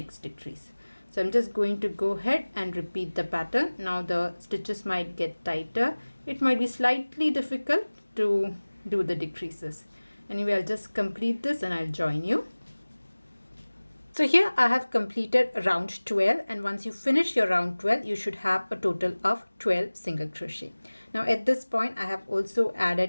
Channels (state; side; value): inverted; both; correlation -1.00